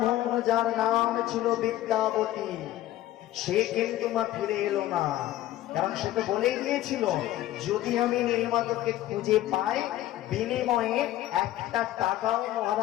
যার নাম ছিল বিদ্যাবতী সে কিন্তু মা ফিরে এলো না কারণ সে তো বলেই দিয়েছিল যদি আমি নীলমাধবকে খুঁজে পাই বিনিময়ে একটা টাকাও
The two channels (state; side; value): quieter; right; 14.3 dB